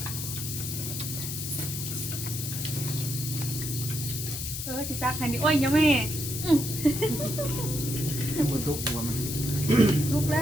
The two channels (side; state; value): left; noise; hiss, 5 dB below the sound